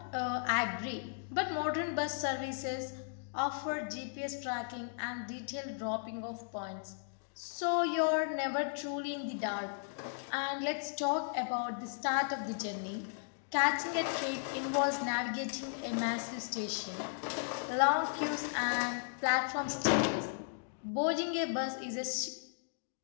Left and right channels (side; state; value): right; silent; digital silence